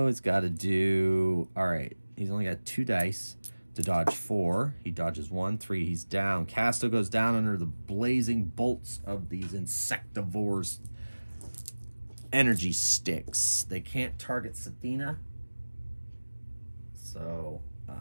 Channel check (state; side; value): inverted; both; correlation -1.00